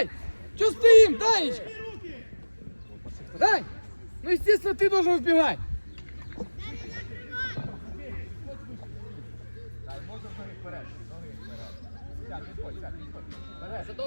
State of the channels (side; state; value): both; inverted; correlation -1.00